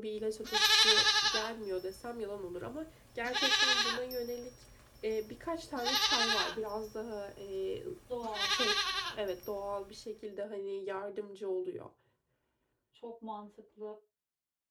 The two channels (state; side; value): identical; both; correlation 1.00